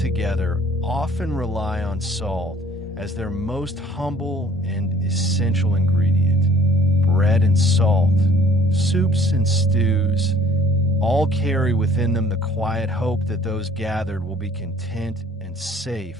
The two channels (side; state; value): both; normal; correlation 0.54